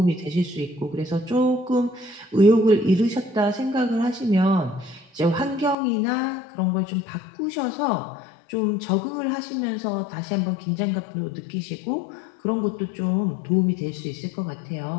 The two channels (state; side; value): drops out; right; at 5.8 s